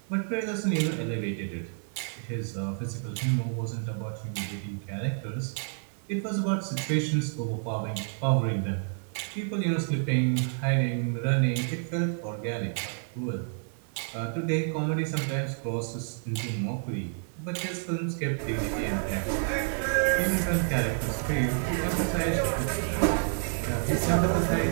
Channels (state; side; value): silent; left; 58 dB below the other